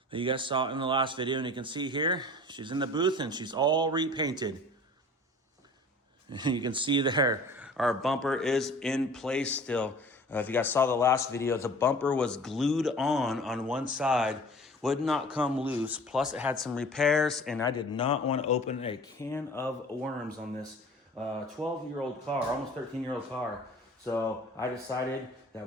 that you guys saw in the last video. And you can see here, she's in the booth and she's all repainted. And you can see there, our bumper is in place still. If you guys saw the last video, the bumper was glued on one side, would not come loose. Plus it had some repairs, and I did not want to open a can of worms on this 12-year-old car, almost 13-year-old car. So I decided that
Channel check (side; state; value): both; normal; correlation 0.44